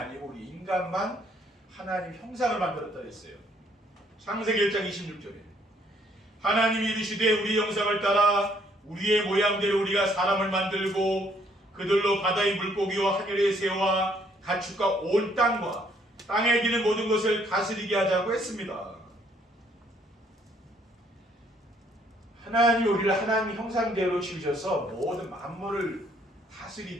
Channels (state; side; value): normal; both; correlation 0.66